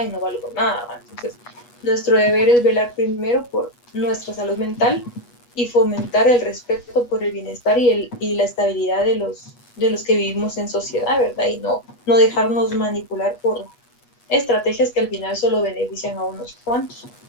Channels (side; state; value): right; late; 8.3 ms